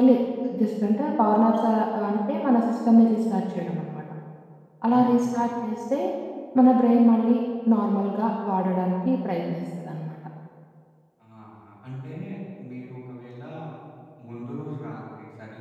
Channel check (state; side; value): identical; both; correlation 1.00